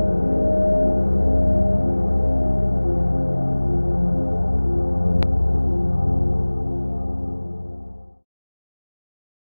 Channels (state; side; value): inverted; both; correlation -1.00